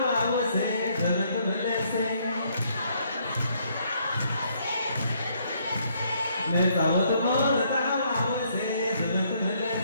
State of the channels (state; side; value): inverted; both; correlation -0.69